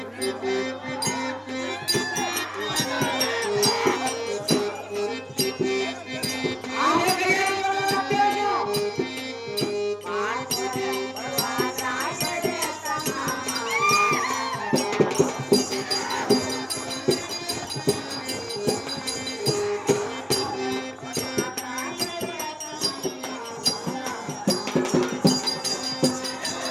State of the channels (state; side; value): identical; both; correlation 1.00